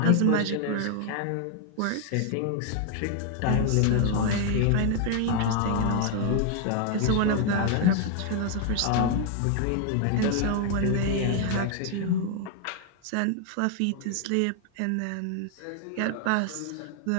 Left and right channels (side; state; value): both; different; correlation 0.00